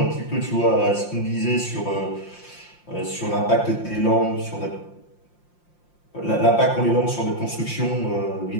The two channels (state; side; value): late; right; 5.7 ms